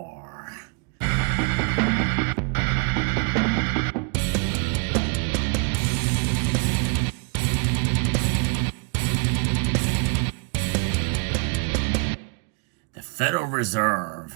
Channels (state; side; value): quieter; left; 33.2 dB